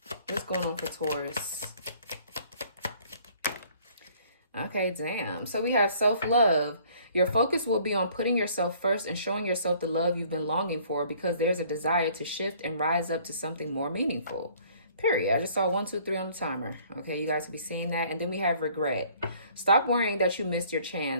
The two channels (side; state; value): both; inverted; correlation -0.57